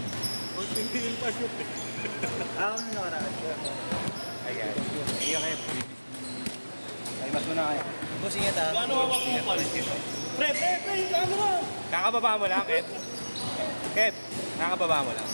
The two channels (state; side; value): inverted; both; correlation -1.00